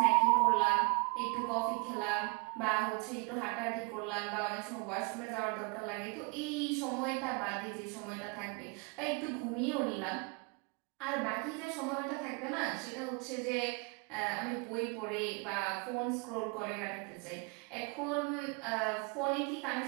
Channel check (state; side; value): quieter; left; 33.2 dB